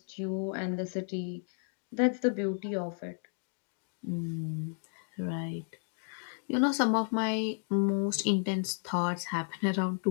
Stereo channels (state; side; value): silent; right; 56 dB below the other